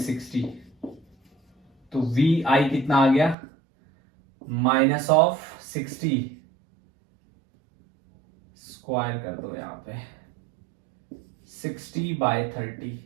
तो वी आई कितना आ गया -60. स्क्वायर कर दो यहां पे, 60/30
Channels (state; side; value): drops out; left; at 3.4 s